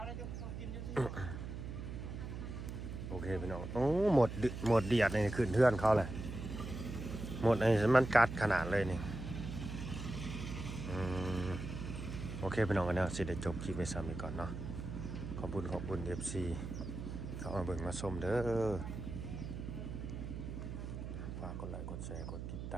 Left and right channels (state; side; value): noise; right; hum, 7 dB below the sound